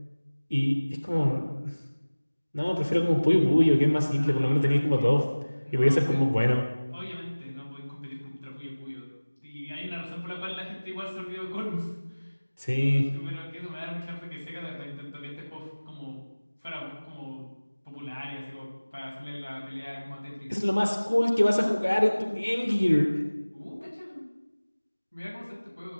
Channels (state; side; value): inverted; both; correlation -1.00